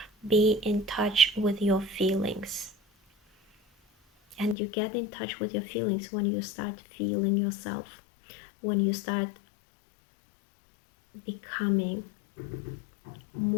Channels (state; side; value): drops out; right; at 4.5 s